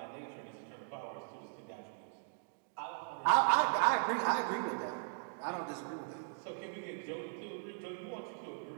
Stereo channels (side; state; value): left; silent; digital silence